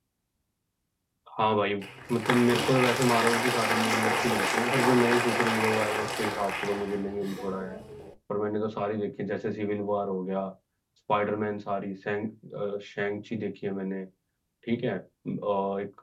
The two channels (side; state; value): both; identical; correlation 1.00